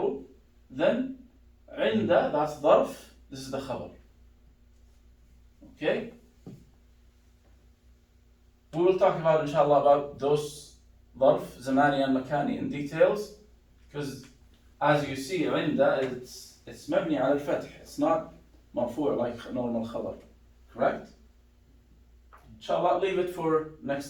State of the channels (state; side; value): identical; both; correlation 1.00